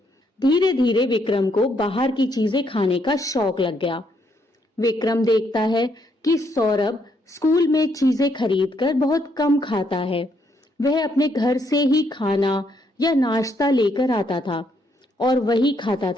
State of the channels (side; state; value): both; normal; correlation 0.74